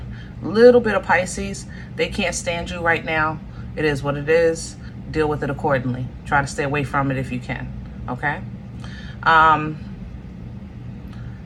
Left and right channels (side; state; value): both; identical; correlation 1.00